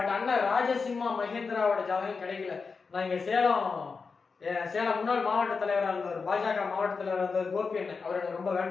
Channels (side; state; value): right; quieter; 4.9 dB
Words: அண்ணன் ராஜசிம்மா மகேந்திராவோட ஜாதகம் கிடைக்கல. நான் இங்க சேலம் முன்னாள் மாவட்ட தலைவராக இருந்தவர், பாஜக மாவட்ட தலைவராக இருந்தவர் கோபி அண்ணன், அவர் எனக்கு ரொம்ப